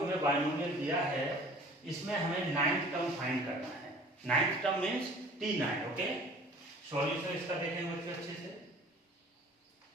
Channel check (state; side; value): normal; both; correlation 0.48